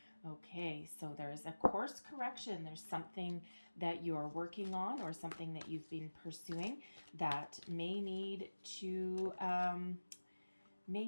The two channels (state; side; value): inverted; both; correlation -1.00